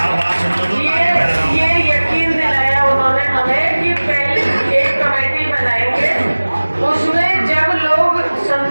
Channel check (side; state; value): both; inverted; correlation -1.00